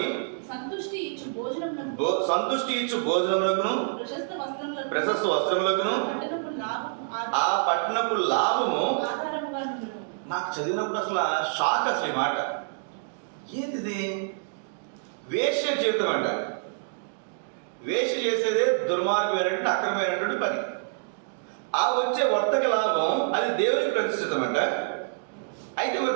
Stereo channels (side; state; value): left; silent; digital silence